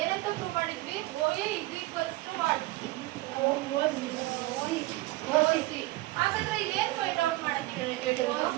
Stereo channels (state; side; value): quieter; left; 19.4 dB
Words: ಏನಂತ ಪ್ರೂವ್ ಮಾಡಿದ್ವಿ? O A is equals to what? OC. ಹಾಗಾದ್ರೆ ಇಲ್ಲಿ ಏನ್ ಫೈಂಡ್ ಔಟ್ ಮಾಡಕ್ಕೆ ಹೇಳಿರೋದು?